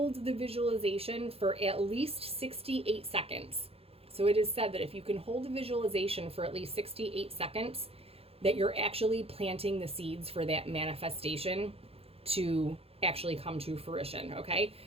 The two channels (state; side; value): late; left; 0.28 ms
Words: the visualization for at least 68 seconds. So it is said that if you can hold a visualization for at least 68 seconds, that you're actually planting the seeds for that manifestation to actually come to fruition. Okay.